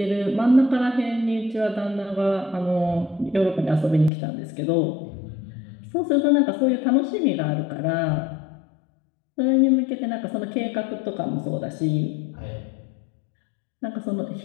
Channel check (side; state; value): right; drops out; at 4.1 s